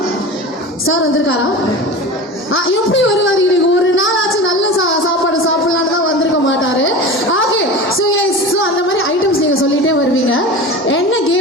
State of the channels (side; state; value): both; normal; correlation 0.31